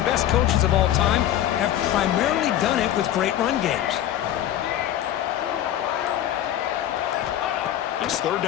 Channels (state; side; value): quieter; right; 11.9 dB